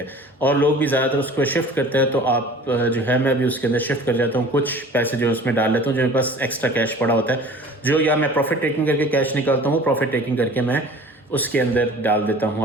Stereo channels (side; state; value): both; normal; correlation 0.44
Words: ہیں، اور لوگ بھی زیادہ تر اس کو شفٹ کرتے ہیں. تو آپ جو ہے میں بھی اس کے اندر شفٹ کر جاتا ہوں، کچھ پیسے جو اس میں ڈال لیتا ہوں جو میرے پاس ایکسٹرا کیش پڑا ہوتا ہے، جو یا میں پروفٹ ٹیکنگ کر کے کیش نکالتا ہوں، وہ پروفٹ ٹیکنگ کر کے میں اس کے اندر ڈال دیتا ہوں